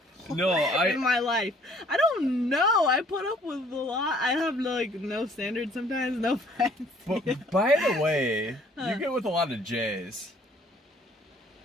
in my life? I don't know. I put up with a lot. I have, like, no standards sometimes, no offense. But, by the way, you get with a lot of J's.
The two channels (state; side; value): normal; both; correlation 0.58